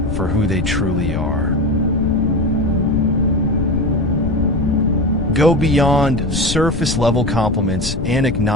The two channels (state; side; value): noise; left; rumble, 4 dB below the sound